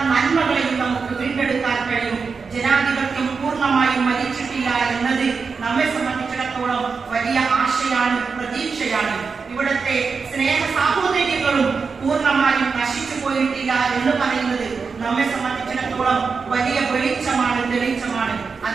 നന്മകളെയും നമുക്ക് വീണ്ടെടുക്കാൻ കഴിയും. ജനാധിപത്യം പൂർണ്ണമായും മരിച്ചിട്ടില്ല എന്നത് നമ്മെ സംബന്ധിച്ചിടത്തോളം വലിയ ആശയാണ്, പ്രതീക്ഷയാണ്. ഇവിടുത്തെ സ്നേഹ സാഹോദര്യങ്ങളും പൂർണ്ണമായും നശിച്ചു പോയിട്ടില്ല എന്ന് പറയുന്നത് നമ്മെ സംബന്ധിച്ചിടത്തോളം വലിയ വെളിച്ചമാണ്, തെളിച്ചമാണ്.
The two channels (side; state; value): left; quieter; 5.1 dB